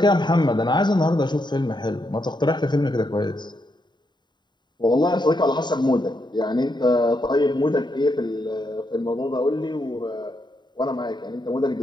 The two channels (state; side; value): late; right; 0.21 ms